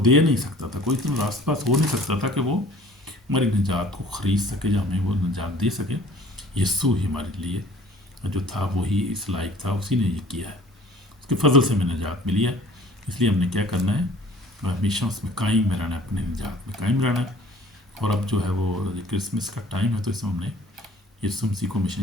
दे नहीं सकता था, कोई इतना रास पास हो नहीं सकता था कि वो हमारी निजात को ख़रीद सके या हमें वो निजात दे सके। यीशु ही हमारे लिए जो था वही इस लायक था, उसी ने ये किया है, उसके फ़ज़ल से हमें निजात मिली है। इसलिए हमने क्या करना है, हमेशा उसमें कायम रहना है, अपने निजात में कायम रहना है। और अब जो है वो क्रिसमस का टाइम है, तो इसमें हमने यीशु मसीह को हमेशा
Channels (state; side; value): normal; both; correlation 0.50